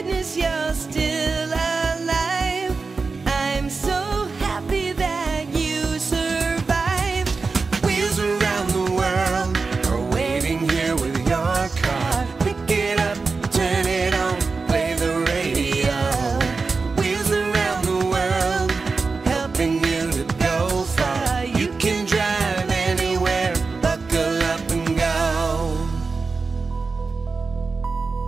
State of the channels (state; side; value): quieter; left; 4.3 dB